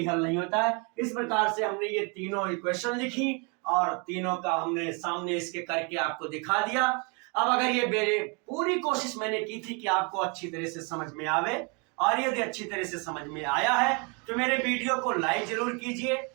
हल नहीं होता है। इस प्रकार से हमने ये तीनों इक्वेशन लिखी और तीनों का हमने सामने इसके करके आपको दिखा दिया। अब अगर ये मेरे पूरी कोशिश मैंने की थी कि आपको अच्छी तरह से समझ में आवे, और यदि अच्छी तरह से समझ में आया है तो मेरे वीडियो को लाइक जरूर कीजिए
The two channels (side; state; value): left; quieter; 33.3 dB